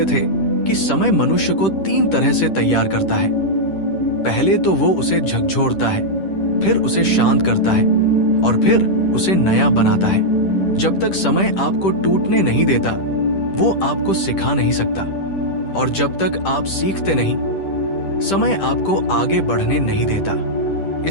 थे कि समय मनुष्य को 3 तरह से तैयार करता है। पहले तो वो उसे झकझोरता है, फिर उसे शांत करता है और फिर उसे नया बनाता है। जब तक समय आपको टूटने नहीं देता, वो आपको सिखा नहीं सकता। और जब तक आप सीखते नहीं, समय आपको आगे बढ़ने नहीं देता।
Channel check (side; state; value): right; late; 10 ms